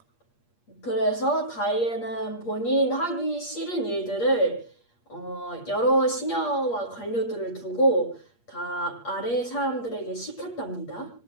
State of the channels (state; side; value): late; right; 8.5 ms